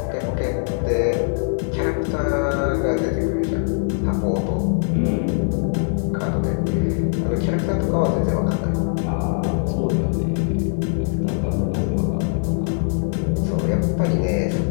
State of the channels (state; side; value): silent; right; digital silence